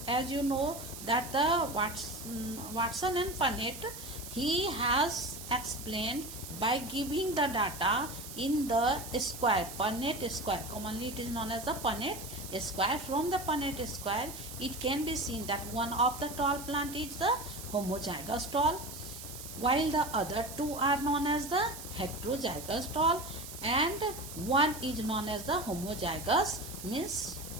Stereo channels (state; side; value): noise; right; hiss, 11 dB below the sound